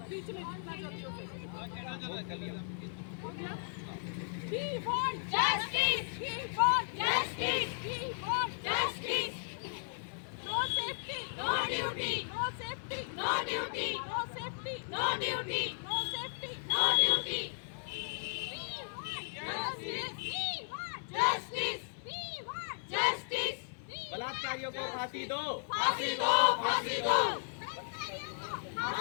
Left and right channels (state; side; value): silent; right; 54 dB below the other